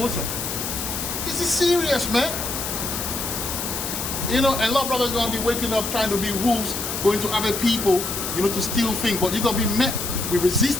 This is serious, man. You know, and a lot of brothers are gonna be waking up trying to be wolves, going to other people, you know, to steal things, but you're gonna be met with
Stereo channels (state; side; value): noise; left; hiss, 4 dB below the sound